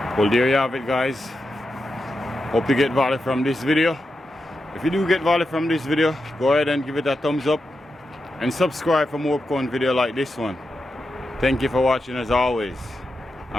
Well, there you have it guys. Hope you get value from this video. If you do get value from this video, go ahead and give it a thumbs up and subscribe for more upcoming video like this one. Thank you for watching as always,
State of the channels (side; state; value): both; normal; correlation 0.88